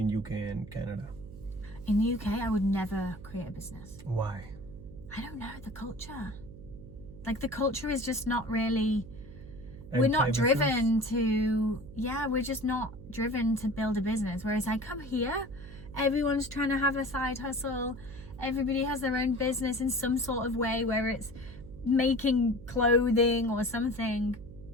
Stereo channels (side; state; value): right; noise; hum, 15 dB below the sound